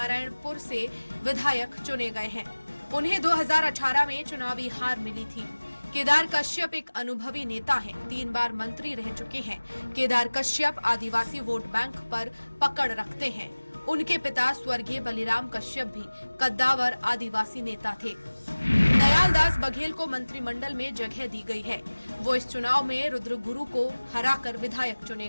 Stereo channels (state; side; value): inverted; both; correlation -1.00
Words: से विधायक चुने गए हैं। उन्हें 2018 में चुनावी हार मिली थी। केदार कश्यप एक अनुभवी नेता हैं, 3 बार मंत्री रह चुके हैं। केदार कश्यप आदिवासी वोट बैंक पर पकड़ रखते हैं। उनके पिता स्वर्गीय बलिराम कश्यप भी कद्दावर आदिवासी नेता थे। दयालदास बघेल को मंत्रिमंडल में जगह दी गई है। वो इस चुनाव में रुद्रगुरु को हराकर विधायक चुने